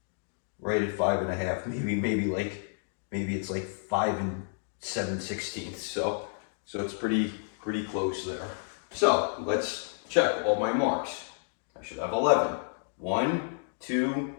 right at 5 1/2. Maybe it's like 5 7/16. So it's pretty close there. So let's check all my marks. I should have 11. 1, 2,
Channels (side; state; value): right; silent; digital silence